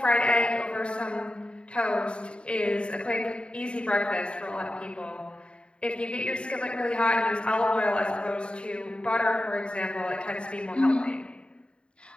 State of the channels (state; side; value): late; right; 0.055 ms